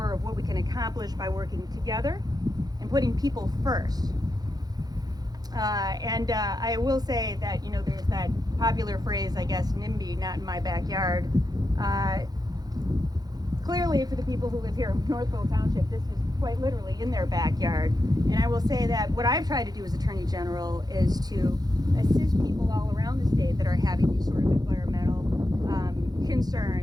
of what we can accomplish by working together and putting people first. And I will say that, you know, there's that popular phrase, I guess, NIMBY, not in my backyard. Clearly, for the people who live here in Northville Township, this is quite literally in their backyard. And I will say that what I've tried to do as Attorney General is to assist people all around the state that are having these sort of environmental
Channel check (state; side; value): late; left; 0.19 ms